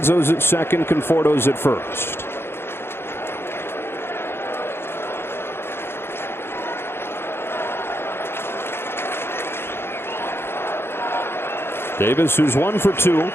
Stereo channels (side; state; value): right; late; 0.11 ms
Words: at second, Conforto's at first. Davis, who's 1 for 2,